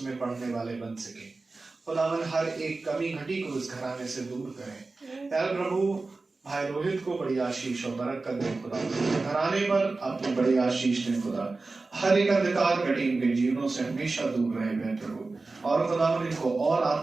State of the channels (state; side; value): quieter; left; 3.6 dB